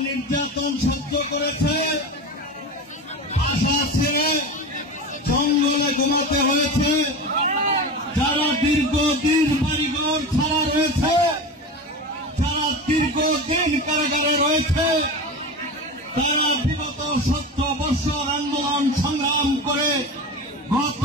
নির্যাতন সহ্য করেছে, আশা ছেড়ে জঙ্গলে ঘুমাতে হয়েছে। যারা দীর্ঘদিন বাড়িঘর ছাড়া রয়েছে, যারা দীর্ঘদিন কারাগারে রয়েছে, তারা বিগত 17 বছর আন্দোলন সংগ্রাম করে গত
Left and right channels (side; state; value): both; normal; correlation 0.27